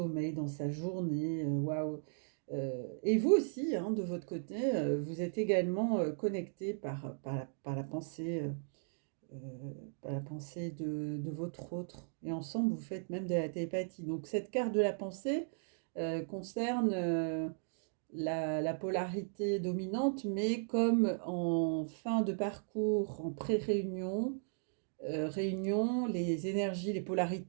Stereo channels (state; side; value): silent; left; digital silence